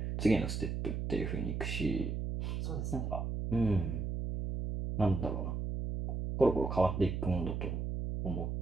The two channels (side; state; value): right; noise; hum, 2 dB below the sound